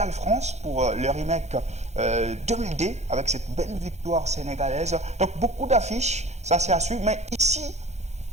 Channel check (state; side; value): late; left; 0.33 ms